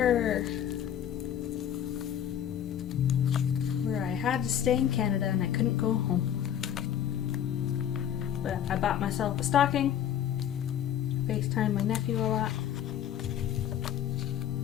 where I had to stay in Canada and I couldn't go home. But I bought myself a stocking. FaceTime my nephew a lot.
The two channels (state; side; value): quieter; right; 9.9 dB